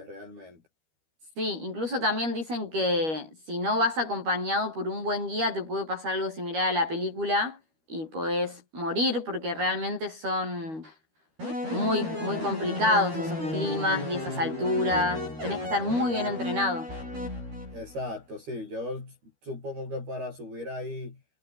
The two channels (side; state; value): left; late; 13 ms